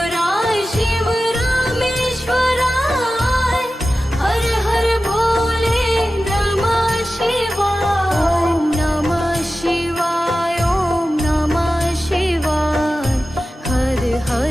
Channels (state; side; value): normal; both; correlation 0.94